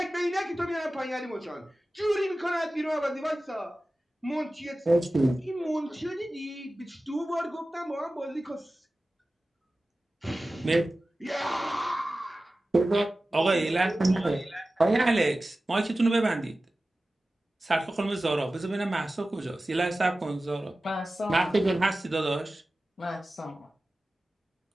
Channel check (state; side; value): normal; both; correlation 0.96